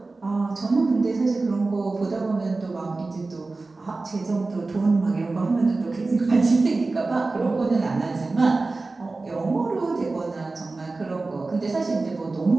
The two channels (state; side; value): quieter; left; 3.5 dB